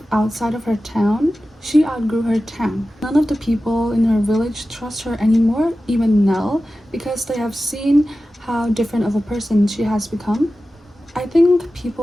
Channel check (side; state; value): both; normal; correlation 0.94